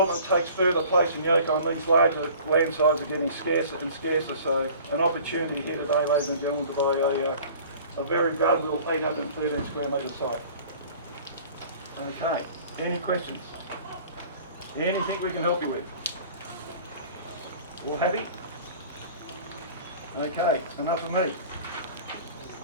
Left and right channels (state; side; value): inverted; both; correlation -0.47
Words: takes further place in Yokine, these larger land sizes are getting scarcer and scarcer, so an opportunity here today, ladies and gentlemen, to buy a very valuable 813 square metre site. Okay, any questions? Anything we can help you with? All happy? Okay, it's enough of me.